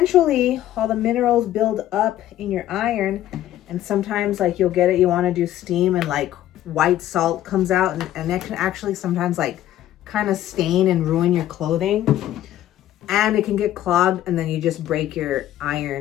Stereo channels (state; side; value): quieter; right; 13.0 dB